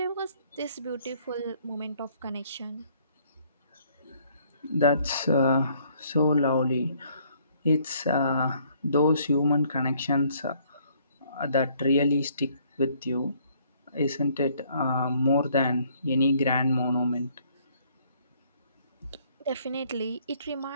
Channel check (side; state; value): both; inverted; correlation -0.64